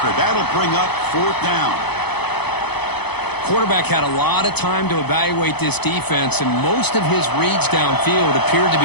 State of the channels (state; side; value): late; right; 0.98 ms